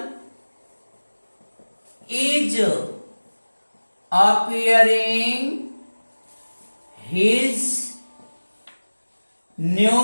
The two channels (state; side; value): inverted; both; correlation -1.00